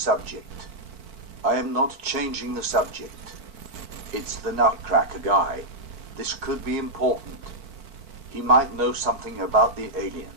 I am not changing the subject. It's the Nutcracker guy. This could be important. He might know something about the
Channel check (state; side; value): late; left; 4.5 ms